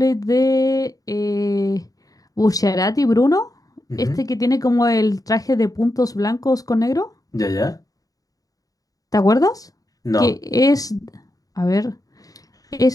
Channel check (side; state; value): right; late; 0.17 ms